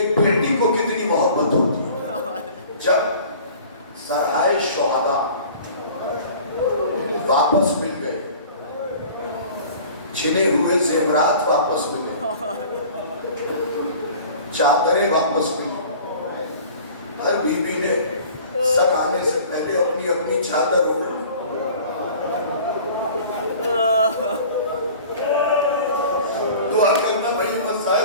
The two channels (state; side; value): inverted; both; correlation -0.45